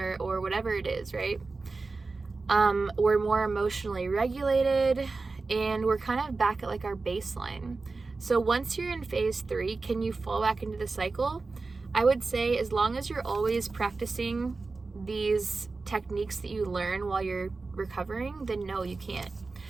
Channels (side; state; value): left; quieter; 3.9 dB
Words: or whatever it is, right? We're more emotionally regulated, and we're kind of back at our baseline. So once you're in phase three, can you fall back into the cycle? I would say, as long as you're always practicing these techniques that you learn while you're recovering, then no, you can't.